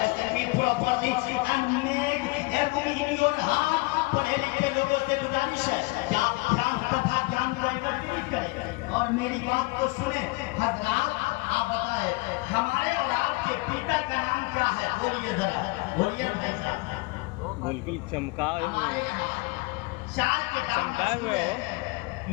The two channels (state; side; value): quieter; right; 24.6 dB